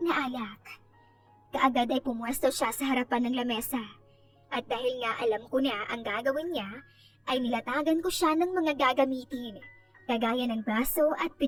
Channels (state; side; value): identical; both; correlation 1.00